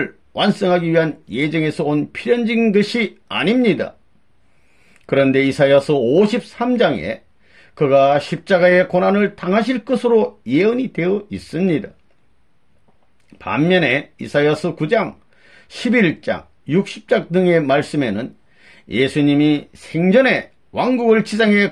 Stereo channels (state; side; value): identical; both; correlation 1.00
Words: 완성하기 위한 예정에서 온 필연적인 것이 아닙니다. 그런데 이사야서 53장에 그가 십자가의 고난을 당하실 것으로 예언이 되어 있습니다. 반면에 이사야서 9장, 11장, 60장 등의 말씀에는 예수님이 생전에 왕국을 지상에